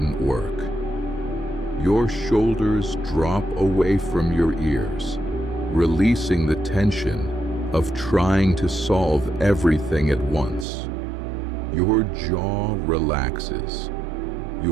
work. Your shoulders drop away from your ears, releasing the tension of trying to solve everything at once. Your jaw relaxes,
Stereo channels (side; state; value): left; drops out; at 10.7 s